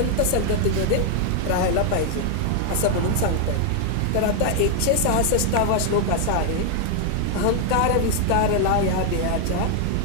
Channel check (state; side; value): different; both; correlation 0.00